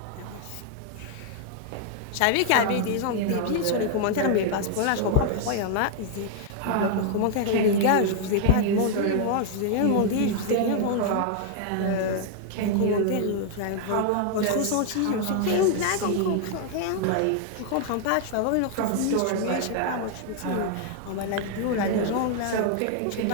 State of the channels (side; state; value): both; different; correlation 0.00